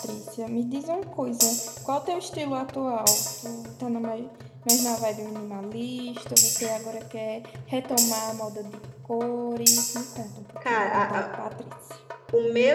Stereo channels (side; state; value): both; identical; correlation 1.00